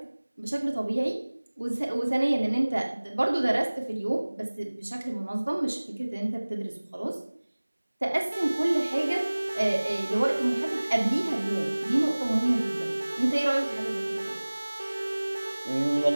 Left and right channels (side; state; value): both; inverted; correlation -1.00